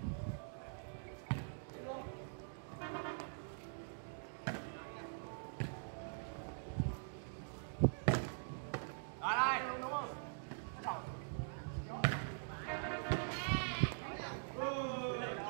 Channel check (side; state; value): left; silent; digital silence